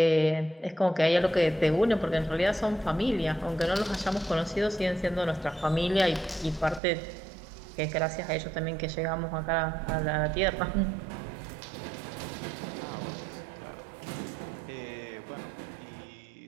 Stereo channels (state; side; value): drops out; left; at 6.8 s